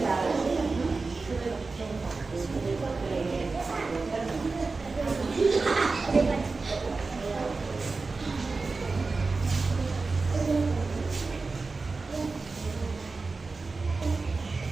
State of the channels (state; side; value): quieter; left; 4.0 dB